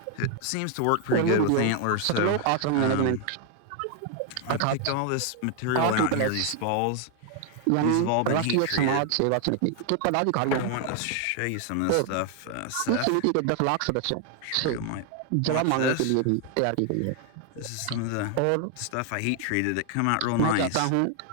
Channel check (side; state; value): both; different; correlation 0.00